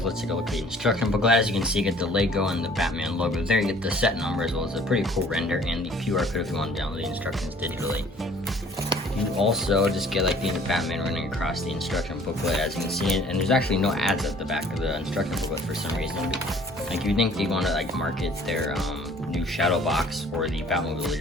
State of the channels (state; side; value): normal; both; correlation 0.54